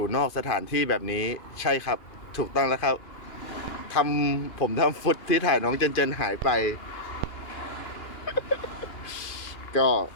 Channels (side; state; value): right; late; 2.5 ms